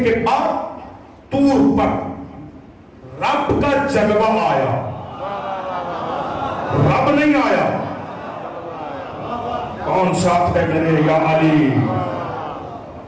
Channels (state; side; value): identical; both; correlation 1.00